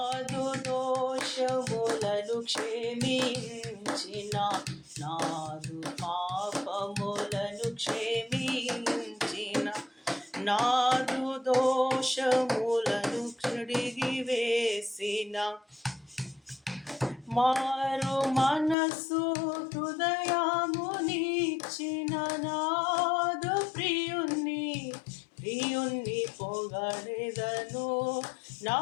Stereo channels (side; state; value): right; drops out; at 18.8 s